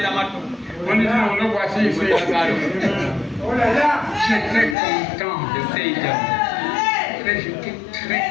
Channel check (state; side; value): drops out; right; at 4.8 s